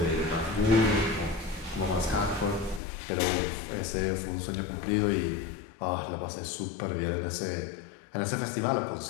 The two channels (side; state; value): right; drops out; at 2.8 s